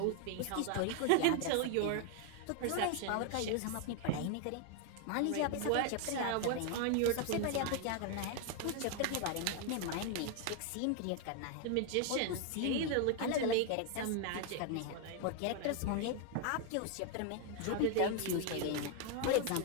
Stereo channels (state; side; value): different; both; correlation 0.01